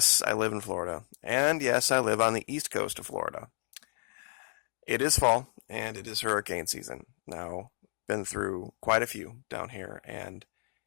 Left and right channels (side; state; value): right; silent; digital silence